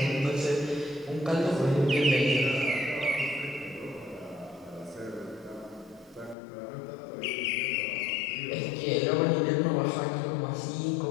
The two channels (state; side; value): drops out; right; at 6.4 s